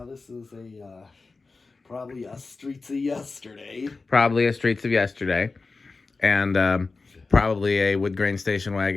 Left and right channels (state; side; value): quieter; right; 4.0 dB